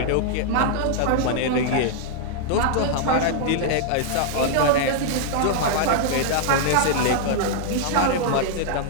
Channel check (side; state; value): both; different; correlation -0.01